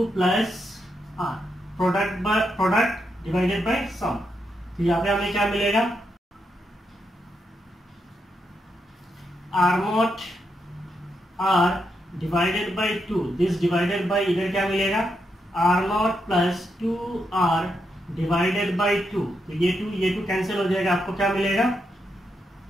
plus R, product divided by sum. तो यहाँ पे हमें क्या मिलेगा, R0 R divided by 2, this divided by इधर क्या मिलेगा, R0 plus 2R divided by 2। तो ये 2 कैंसिल हो जाएगा, आपको क्या मिलेगा,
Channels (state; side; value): normal; both; correlation 0.82